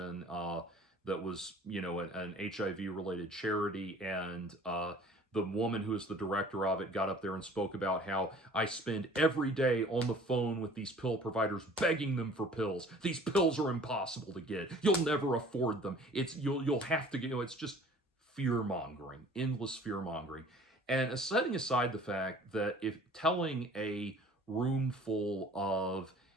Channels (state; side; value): normal; both; correlation 0.49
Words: that was an HIV related charity, and the woman who is the director of it got up there and spoke about how I spend every day on the phone with these pill providers begging them for pills. These pills are impossible to get. You'll never afford them. You'll have to get, it's just fear mongering, endless fear mongering. And setting aside the fact that if telling a room full of